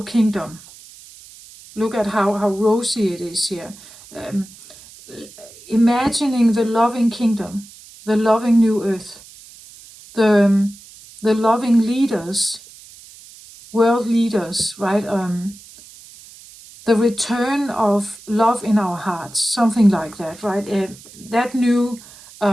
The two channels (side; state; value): right; noise; hiss, 21 dB below the sound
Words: kingdom. Look at how rosy it is here. Imagining the loving kingdom, the loving new earth, the loving leaders, world leaders, right? The return of love in our hearts, something like that, right? That new